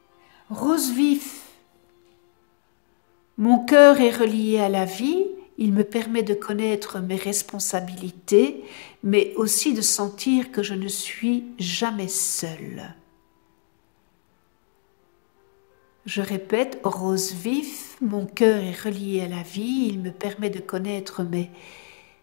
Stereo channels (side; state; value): right; silent; digital silence